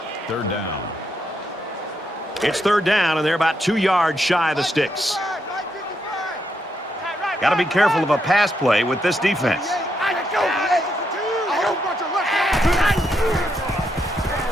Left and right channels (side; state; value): both; normal; correlation 0.79